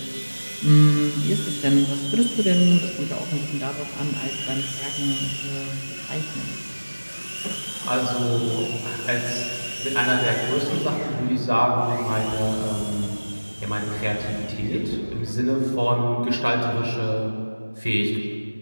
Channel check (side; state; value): both; inverted; correlation -1.00